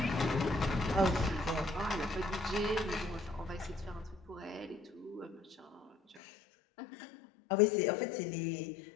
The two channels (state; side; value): drops out; right; at 6.2 s